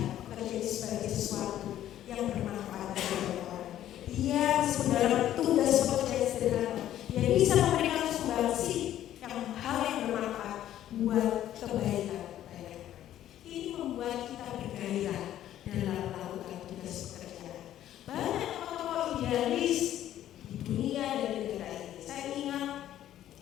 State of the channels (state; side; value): quieter; right; 12.1 dB